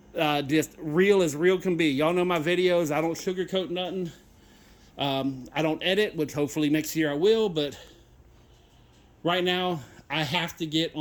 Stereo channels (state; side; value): identical; both; correlation 1.00